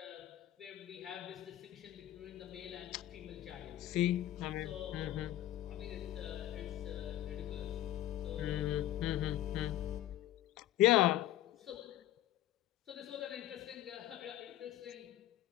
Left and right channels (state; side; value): quieter; right; 13.6 dB